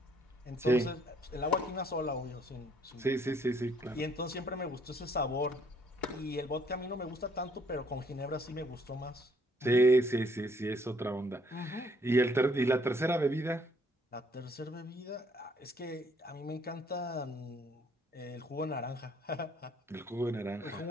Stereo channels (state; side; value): normal; both; correlation 0.64